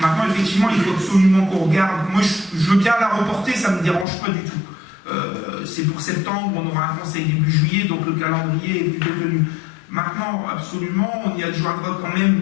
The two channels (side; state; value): right; drops out; at 4.0 s